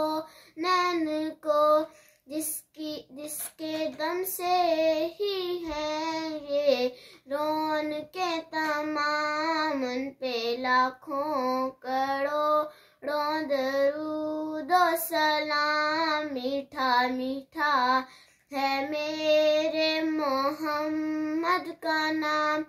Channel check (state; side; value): identical; both; correlation 1.00